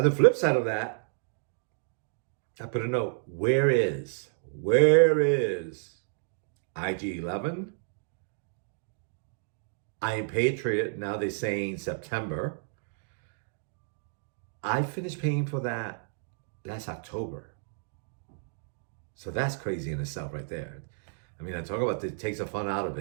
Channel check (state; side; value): silent; left; digital silence